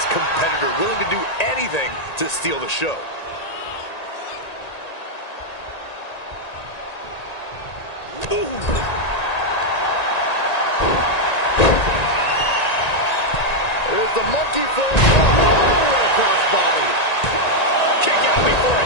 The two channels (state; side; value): late; right; 1.9 ms